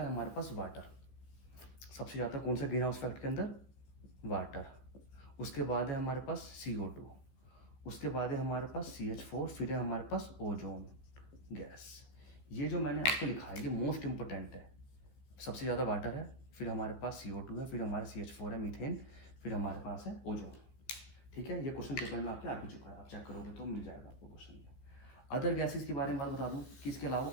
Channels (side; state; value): right; late; 15 ms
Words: है हमारे पास वाटर। सबसे ज़्यादा कौन सा ग्रीन हाउस इफेक्ट के अंदर, वाटर। उसके बाद है हमारे पास CO2, उसके बाद है हमारे पास CH4, फिर है हमारे पास ओजोन गैस। ये जो मैंने आपको लिखा है ये मोस्ट इंपॉर्टेंट है। सबसे ज़्यादा वाटर है, फिर हमारे पास CO2 है, फिर हमारा CH4 है मीथेन, फिर हमारे पास है ओजोन, ठीक है। ये क्वेश्चन पेपर में आपके आ भी चुका है, आप चेक करोगे तो मिल जाएगा आपको क्वेश्चन में। अदर गैसेज के बारे में बात बता दूं कि इसके अलावा